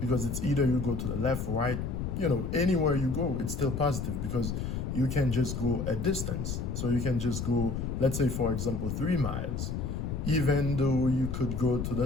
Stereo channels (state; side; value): noise; left; rumble, 3 dB below the sound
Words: Because it's either you go to the left, right, anywhere you go, it's still positive because you can just go a distance. So you can just go, let's say, for example, 3 miles. Even though you could go to the